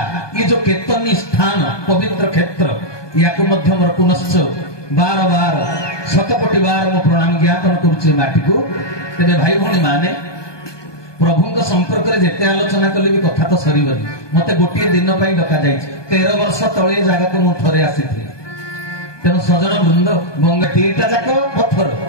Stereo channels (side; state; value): right; late; 1.2 ms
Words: ये जो केतनी स्थान पवित्र क्षेत्र या मोर पुनश्च बार बार शतकोटी बार मो प्रणाम ज्ञापन करुचे माटी को तेरे भाई भौणी माने प्रभु संपर्क में जिते आलोचना कले भी कथा तो सरीबनी मते गोटे दिन पर डका जाइए 13 वर्ष तले जगह को मुझे आसी तेणु सजन वृंद गंगा दीटा जाक पत्थर